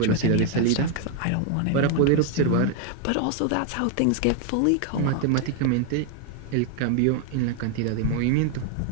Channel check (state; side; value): different; both; correlation 0.01